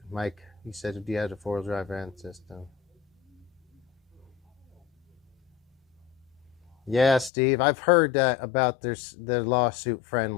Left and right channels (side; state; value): right; drops out; at 7.3 s